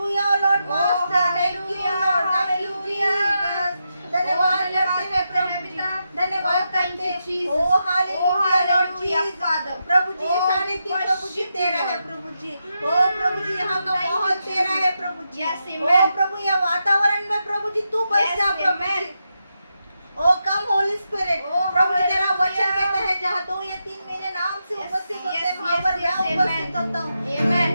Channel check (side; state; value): both; inverted; correlation -0.86